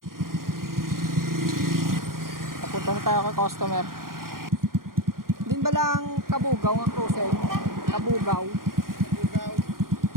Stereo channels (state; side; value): late; left; 0.91 ms